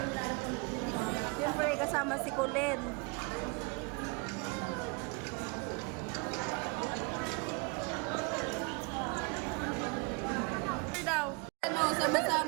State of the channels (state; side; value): quieter; left; 30.3 dB